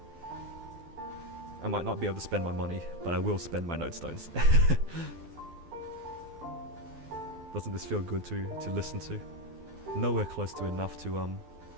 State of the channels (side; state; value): left; late; 12 ms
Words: I might not be able to spend my money, but I will spend my node stones. Doesn't this feel good to listen to? Nowhere close to enough to